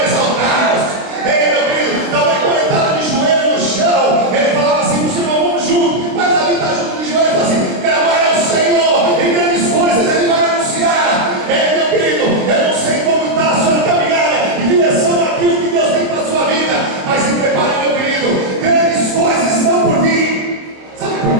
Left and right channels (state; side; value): late; left; 26 ms